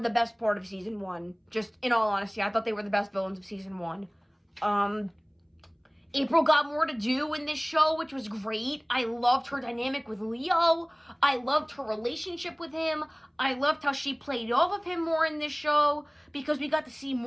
best part of season 1. Just in all honesty, I thought they were the best villains of season 1. April got more to do in this show, which was great. I loved her dynamic with Leo. I loved her relationship with him. I loved how she played off of him more in this show, because we got to see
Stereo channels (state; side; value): identical; both; correlation 1.00